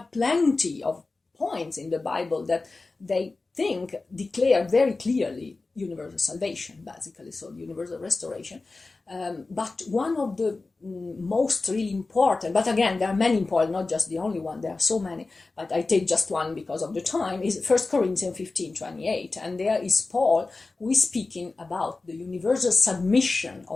plenty of points in the Bible that they think declare very clearly universal salvation, basically, so universal restoration. But one of the most really important, but again, there are many important, not just the only one, there are so many, but I take just one because of the time, is 1 Corinthians 15:28. And there is Paul who is speaking about the universal submission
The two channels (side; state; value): right; quieter; 3.6 dB